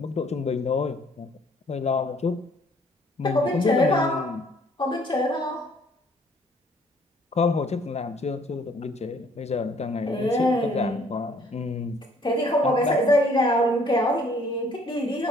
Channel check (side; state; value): both; normal; correlation 0.61